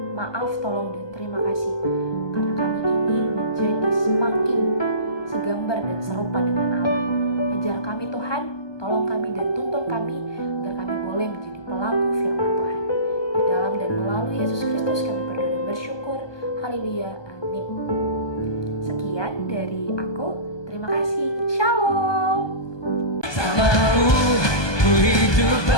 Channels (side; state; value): right; late; 1.2 ms